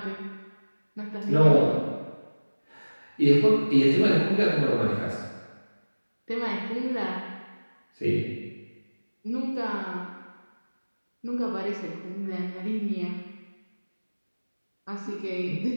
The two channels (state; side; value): inverted; both; correlation -1.00